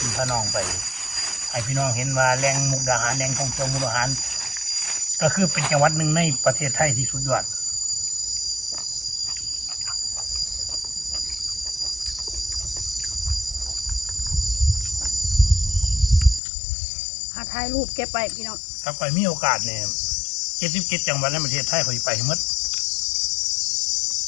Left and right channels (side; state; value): right; drops out; at 16.4 s